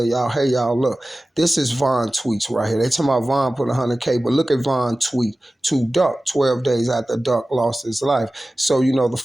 y'all, hey, y'all, look, this is Von tweets right here. They talking about Von put 100K, but look at Von tweet to Duck 12 days after Duck lost his life. So, the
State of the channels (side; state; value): both; normal; correlation 0.96